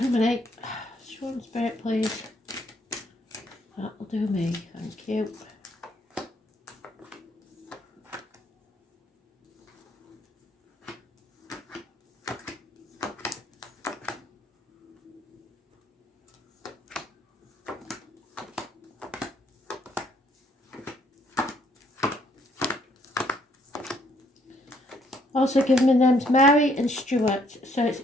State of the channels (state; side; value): normal; both; correlation 0.68